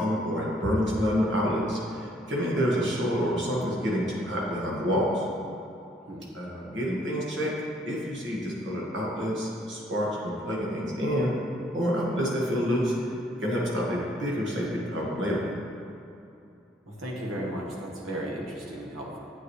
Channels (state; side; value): normal; both; correlation 0.65